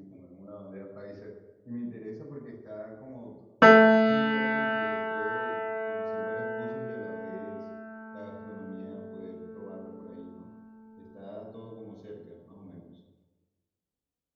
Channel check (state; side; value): identical; both; correlation 1.00